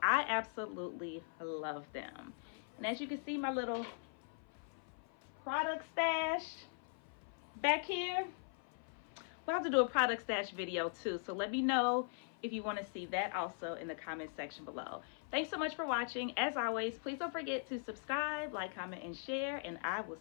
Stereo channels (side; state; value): right; silent; 51 dB below the other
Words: I absolutely love them. And as you can see, my little product stash back here. We'll have to do a product stash video too, so let me know if you want to see that also in the comment section below. Thanks so much for watching. As always, please don't forget to subscribe, like, comment, and share, and I will